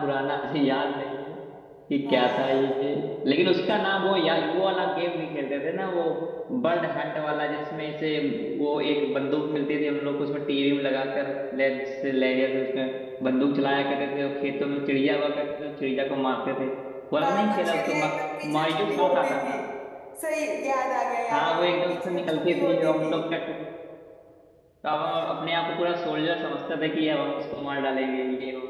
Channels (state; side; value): identical; both; correlation 1.00